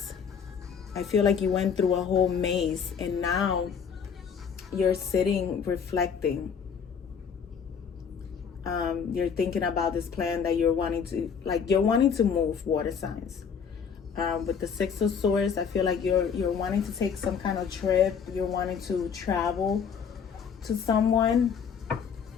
I feel like you went through a whole maze and now you're sitting reflecting. You're thinking about this plan that you're wanting to move, water signs. With the 6 of Swords, I feel like you're wanting to take some kind of trip. You're wanting to travel to someone.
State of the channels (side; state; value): right; quieter; 6.7 dB